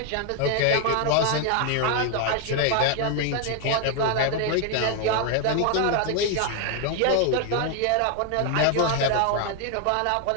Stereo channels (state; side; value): different; both; correlation 0.01